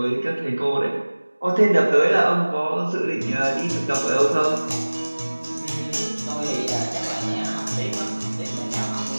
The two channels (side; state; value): both; inverted; correlation -1.00